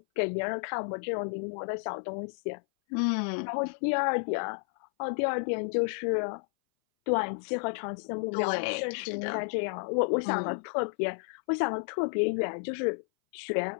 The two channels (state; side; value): silent; right; 57 dB below the other